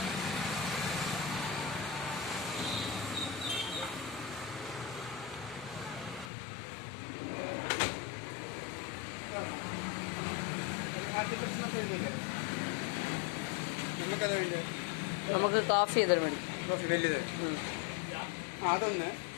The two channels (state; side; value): drops out; right; at 6.3 s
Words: നമുക്കത് വേണ്ടത് നമുക്ക് കോഫി ചെയ്താൽ മതി. കോഫി വലുത് അതൊന്ന്,